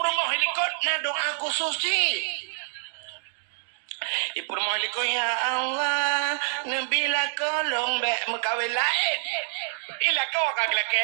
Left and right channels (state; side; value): silent; left; digital silence